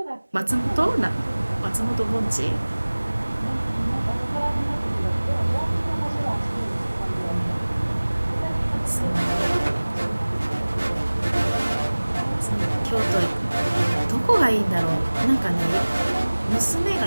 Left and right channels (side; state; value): both; inverted; correlation -1.00